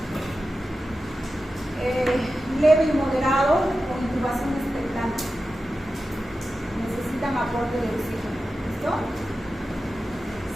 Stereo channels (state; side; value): normal; both; correlation 0.93